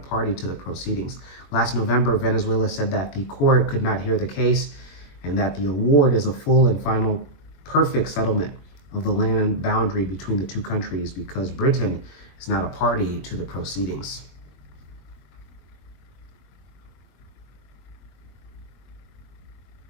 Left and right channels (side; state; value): right; late; 22 ms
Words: to the proceedings. Last November, Venezuela said that the court could not hear the case and that the award is a full and final perfect settlement of the land boundary between the two countries because Britain is not a party to the proceedings.